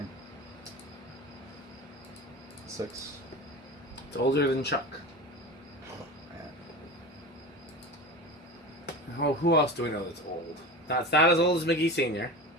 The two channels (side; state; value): both; normal; correlation 0.30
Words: 6. It's older than Chuck. Man. Oh, who else do we know that's old? It's not as old as McGee Sr.